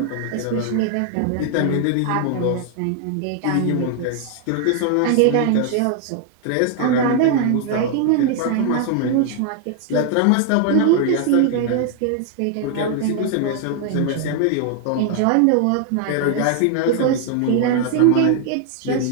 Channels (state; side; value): different; both; correlation 0.00